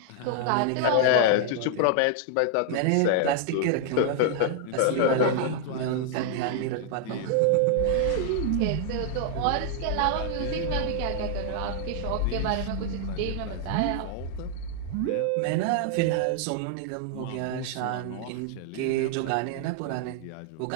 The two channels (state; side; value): different; both; correlation 0.00